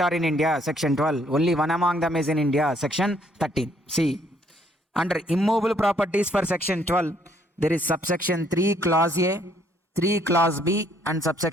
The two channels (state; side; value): normal; both; correlation 0.66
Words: are in India, section 12. Only one among them is in India, section 13. See, under immovable properties for section 12, there is subsection 3 clause A, 3 clause B and